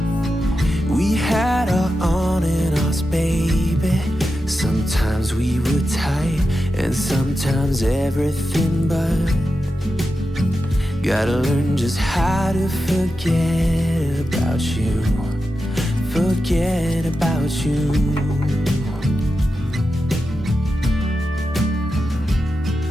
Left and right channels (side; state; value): both; normal; correlation 0.90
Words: We had our on and offs, baby. Sometimes we were tight, and sometimes everything but. Gotta learn just how to forget about you. Forget about you.